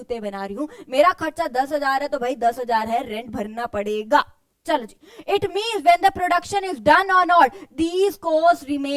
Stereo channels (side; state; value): both; identical; correlation 1.00